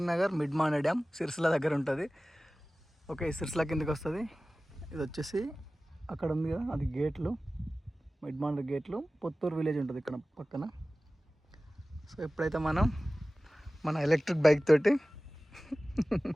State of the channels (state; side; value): normal; both; correlation 0.97